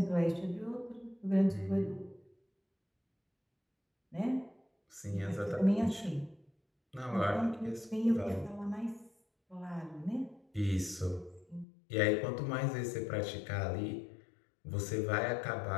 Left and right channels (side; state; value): right; drops out; at 11.7 s